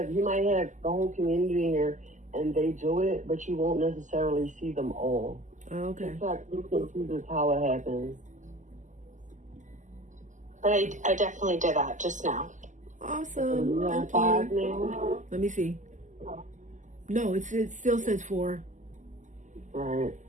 might have the whole community here and they do it, but you won't necessarily see them all. Okay. In fact, you can see this how it happens. But I definitely did that just now. Awesome. Thank 5 you. now? Let me see. No, it still says 4. Right.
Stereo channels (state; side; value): late; left; 0.36 ms